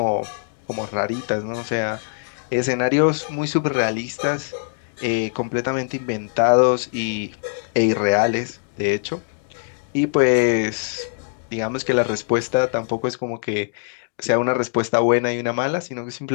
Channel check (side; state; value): right; silent; digital silence